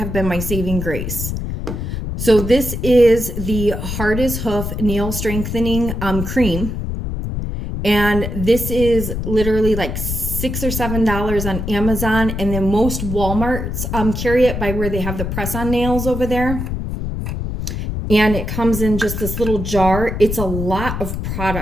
been my saving grace. So this is the Hard as Hoof Nail Strengthening Cream. And this is literally like $6 or $7 on Amazon, and then most Walmarts carry it by where they have the press-on nails over there. And it comes in just this little jar. It's a lot of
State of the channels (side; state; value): left; noise; rumble, 4 dB below the sound